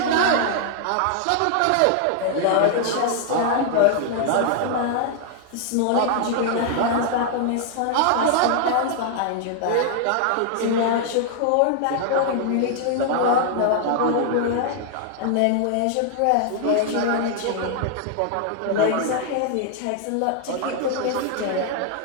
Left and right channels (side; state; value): both; different; correlation -0.01